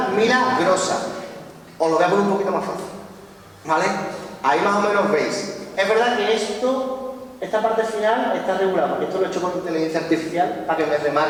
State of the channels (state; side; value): identical; both; correlation 1.00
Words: Milagrosa. Os lo voy a poner un poquito más fácil, ¿vale? Ahí más o menos veis. Es verdad que esta parte final está regulada, porque esto lo he hecho con inteligencia artificial para que me